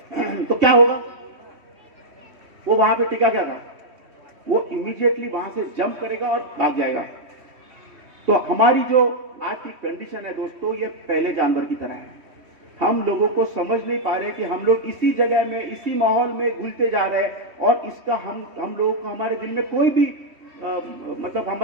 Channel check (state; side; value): late; left; 3.1 ms